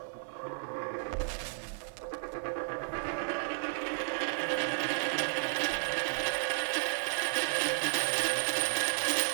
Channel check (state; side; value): silent; left; digital silence